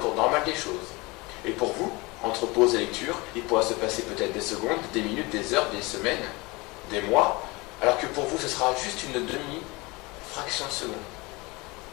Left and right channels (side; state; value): right; quieter; 24.3 dB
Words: normal des choses. Et pour vous, entre pause et lecture, il pourra se passer peut-être des secondes, des minutes, des heures, des semaines, des mois, alors que pour vous, ce sera juste une demi-fraction de seconde.